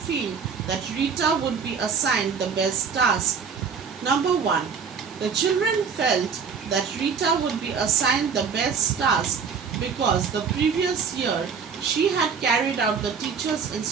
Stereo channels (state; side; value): quieter; left; 6.1 dB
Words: that Rita would be assigned the best task? Number 1. The children felt that Rita would be assigned the best task because the previous year she had carried out the teacher's